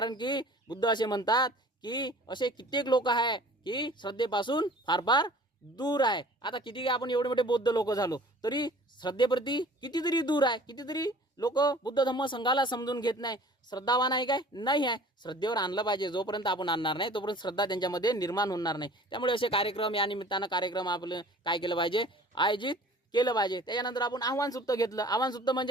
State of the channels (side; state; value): both; normal; correlation 0.48